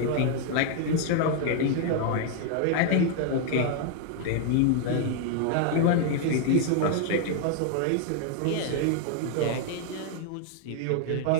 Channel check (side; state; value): both; different; correlation 0.00